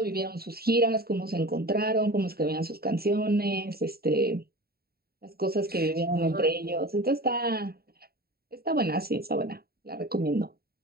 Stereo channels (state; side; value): late; left; 0.45 ms